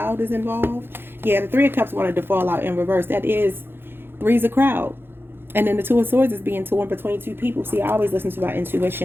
is involved. Yeah, the Three of Cups wanted to fall out in reverse. That is three's a crowd. And then the Two of Swords is being torn between two people. See, I always listen to my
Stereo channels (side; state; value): left; late; 0.10 ms